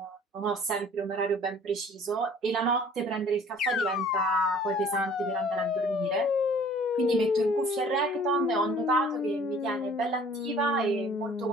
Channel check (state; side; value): normal; both; correlation 0.52